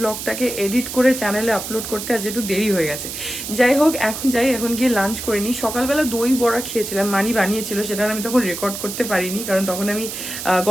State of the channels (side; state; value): right; noise; hiss, 7 dB below the sound